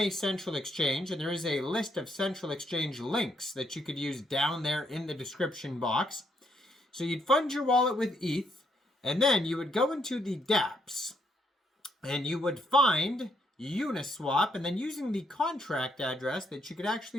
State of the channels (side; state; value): both; normal; correlation 0.74